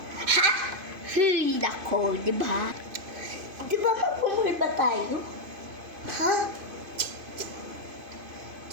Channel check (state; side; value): late; left; 2.5 ms